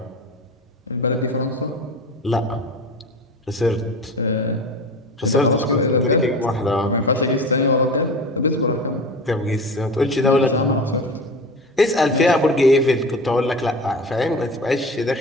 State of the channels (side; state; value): both; normal; correlation 0.32